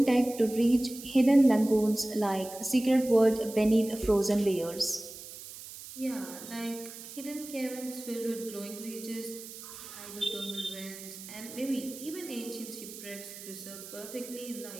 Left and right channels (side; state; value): right; noise; hiss, 13 dB below the sound